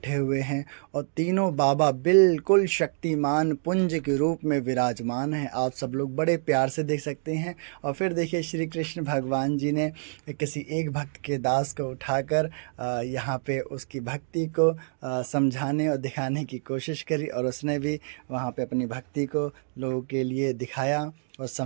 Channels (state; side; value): silent; left; digital silence